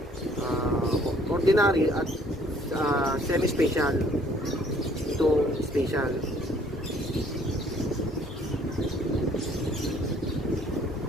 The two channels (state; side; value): normal; both; correlation 0.60